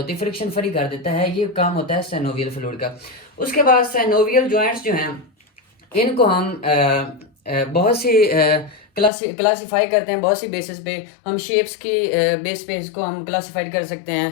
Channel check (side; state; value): right; drops out; at 9.1 s